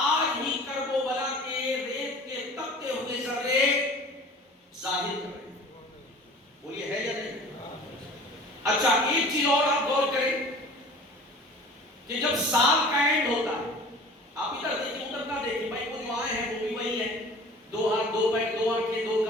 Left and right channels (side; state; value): both; normal; correlation 0.43